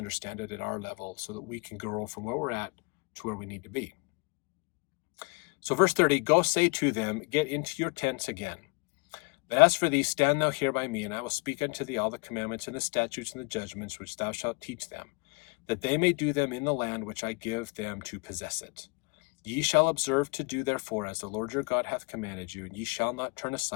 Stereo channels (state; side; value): quieter; right; 30.4 dB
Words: it at our level so that we can grow from where we're at to where we need to be. So verse 30, go say to them, get into your tents again. But as for thee, stand thou here by me, and I will speak unto thee all the commandments and the statutes and the judgments which thou shalt teach them, that they may do them in the land which I give them to possess it. Ye shall observe to do therefore as the Lord your God hath commanded you, and ye shall not turn